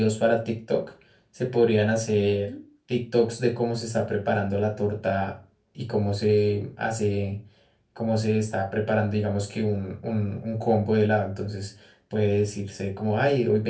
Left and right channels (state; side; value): identical; both; correlation 1.00